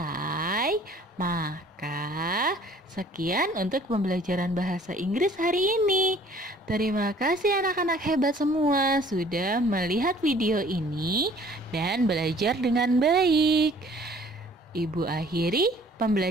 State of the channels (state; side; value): normal; both; correlation 0.54